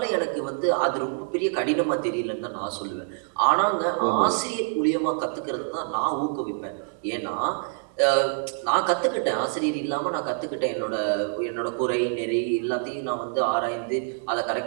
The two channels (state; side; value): silent; left; 61 dB below the other